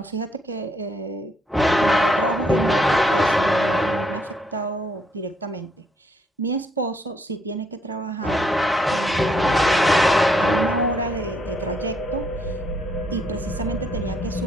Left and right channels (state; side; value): normal; both; correlation 0.72